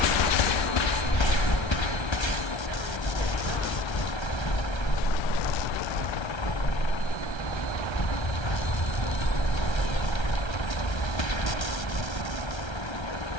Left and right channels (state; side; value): late; right; 1.3 ms